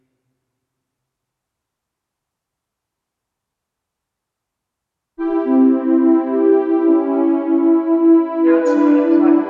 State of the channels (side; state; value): both; identical; correlation 1.00